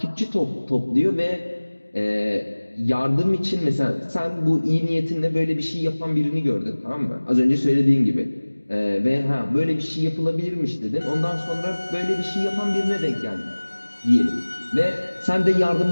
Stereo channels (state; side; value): inverted; both; correlation -1.00